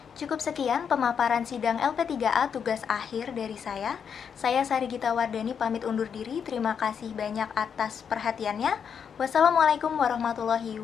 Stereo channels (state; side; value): quieter; right; 7.2 dB